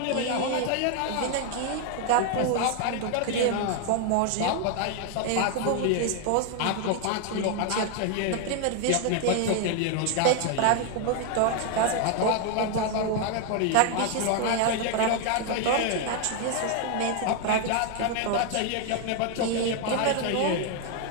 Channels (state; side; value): different; both; correlation 0.00